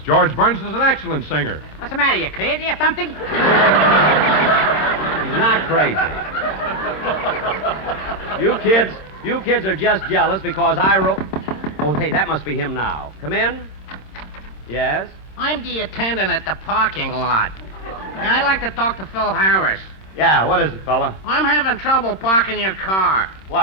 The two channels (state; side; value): late; right; 26 ms